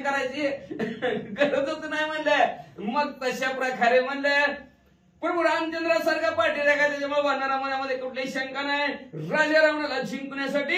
गरजच नाही म्हणलं. मग तशा प्रकारे म्हणलं प्रभू रामचंद्रासारखा पाठीरा काय, त्याच्यामुळे वानरा मनामध्ये कुठलीही शंका नाही. राजा रावणाला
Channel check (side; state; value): both; identical; correlation 1.00